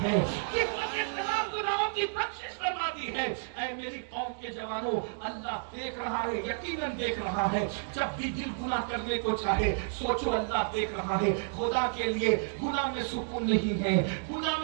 ہے, کفل کے تمام گناہوں کی بخشش فرما دی ہے. اے میری قوم کے جوانوں, اللہ دیکھ رہا ہے, یقیناً دیکھ رہا ہے. جب بھی دل گناہ کرنے کو چاہے سوچو اللہ دیکھ رہا ہے. خدا کے لیے گناہ میں سکون نہیں ہے, گناہ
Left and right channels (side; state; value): left; silent; digital silence